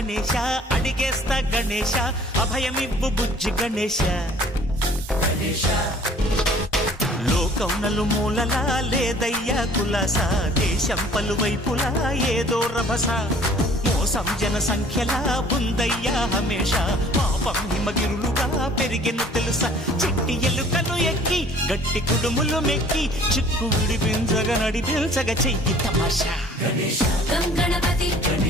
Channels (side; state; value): both; normal; correlation 0.52